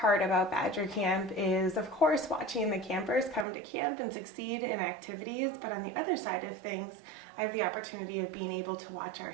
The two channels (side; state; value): left; drops out; at 3.5 s